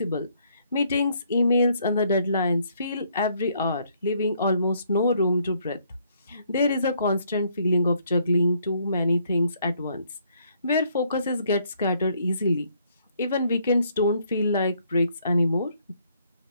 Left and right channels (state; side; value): inverted; both; correlation -0.68